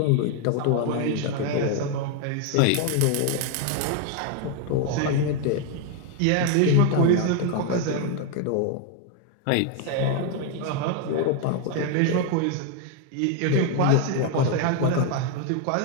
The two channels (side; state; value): both; different; correlation 0.01